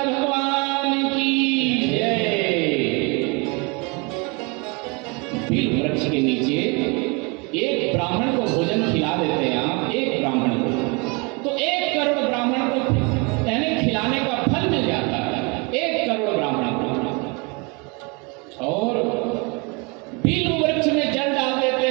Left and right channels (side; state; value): left; quieter; 30.3 dB